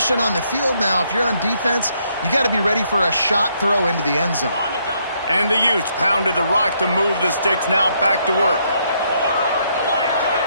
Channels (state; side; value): inverted; both; correlation -0.73